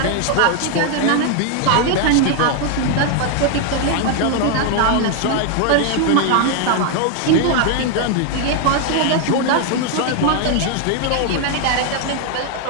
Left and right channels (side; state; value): both; different; correlation 0.00